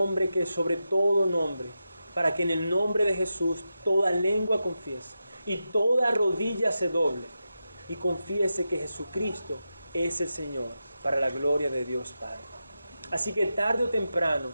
que es sobre todo nombre, para que en el nombre de Jesús toda lengua confiese y toda rodilla se doble y confiese que Jesucristo es el Señor, para la gloria de Dios Padre. Así que tarde o temprano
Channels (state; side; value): inverted; both; correlation -0.89